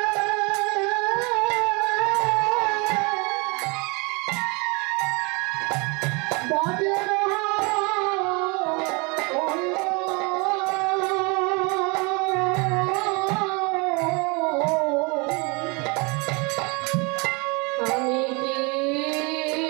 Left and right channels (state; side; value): quieter; left; 29.5 dB